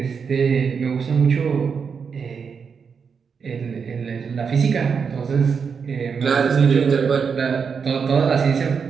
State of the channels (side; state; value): left; quieter; 6.1 dB